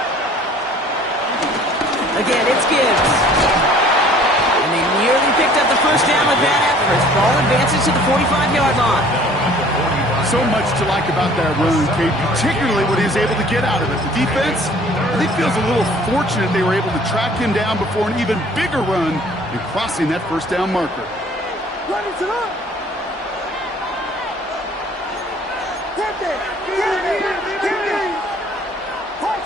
Again, it's Gibbs. And they nearly picked up the 1st down with that effort. Ball advances to the 45-yard line. So much to like about that run, Kate, particularly what he was able to get out of it. The defense, I think, feels a little fortunate they were able to track him down before an even bigger run and crossing that 1st down marker.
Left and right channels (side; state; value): both; normal; correlation 0.53